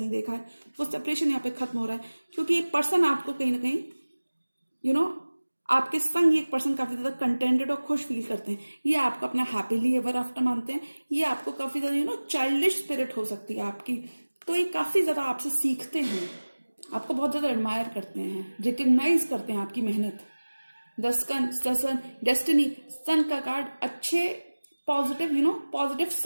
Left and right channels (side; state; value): both; inverted; correlation -1.00